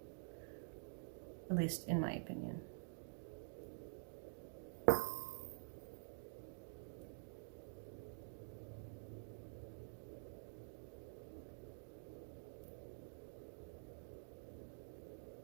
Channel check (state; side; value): silent; left; digital silence